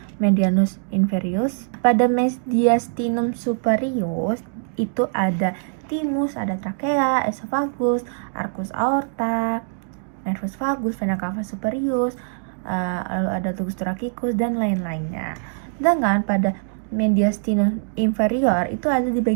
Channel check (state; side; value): silent; left; digital silence